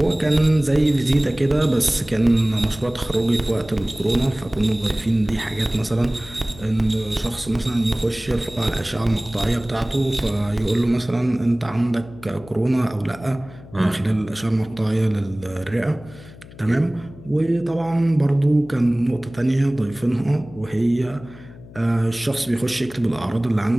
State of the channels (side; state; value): left; noise; hum, 19 dB below the sound